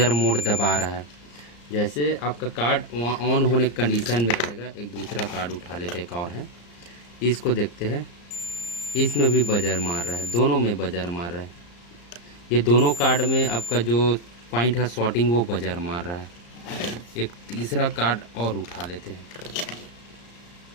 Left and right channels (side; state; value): right; late; 34 ms